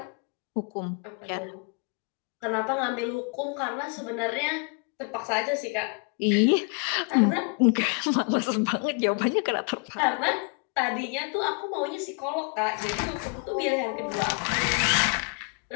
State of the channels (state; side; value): quieter; right; 36.0 dB